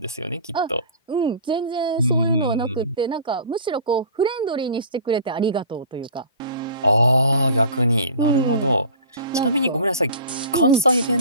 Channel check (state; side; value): inverted; both; correlation -0.41